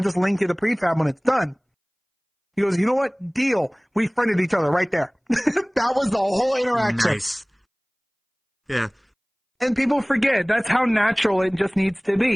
link you the prefab when it's done. He goes, you know what? Deal. We friended each other right there. That was the whole interaction. Nice. Yeah. And people forget, that's how natural it just needs to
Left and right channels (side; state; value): both; identical; correlation 1.00